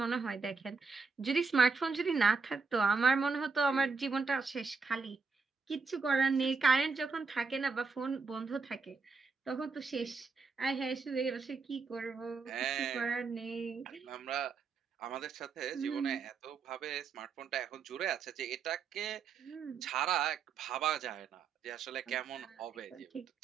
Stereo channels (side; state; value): left; quieter; 4.9 dB